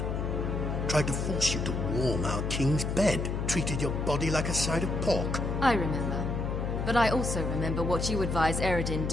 Tried to force you to warm our king's bed. Treated your body like a side of pork. I remember. But I also remember what you advised Eredin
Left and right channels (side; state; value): left; noise; hum, 1 dB below the sound